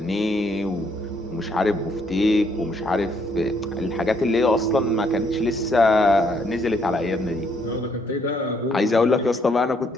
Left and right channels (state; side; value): normal; both; correlation 0.70